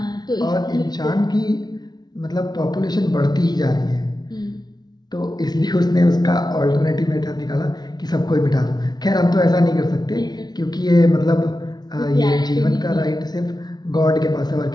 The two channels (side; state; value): right; late; 0.19 ms